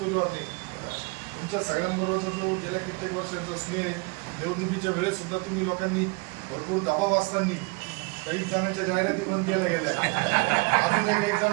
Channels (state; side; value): quieter; left; 29.8 dB